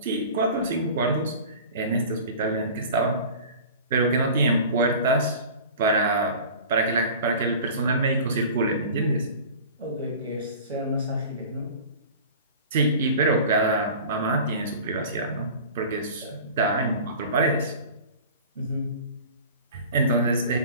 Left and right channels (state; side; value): inverted; both; correlation -0.39